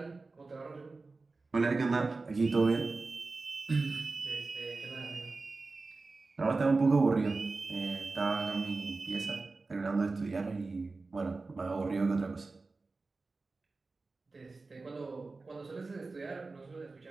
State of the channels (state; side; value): quieter; left; 3.7 dB